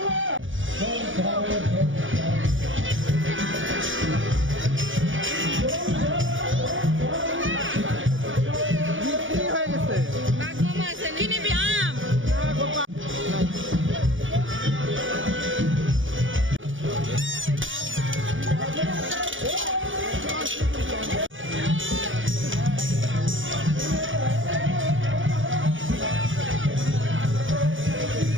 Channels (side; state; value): left; late; 0.57 ms